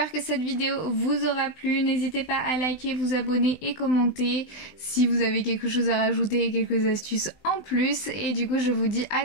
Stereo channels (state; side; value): late; right; 20 ms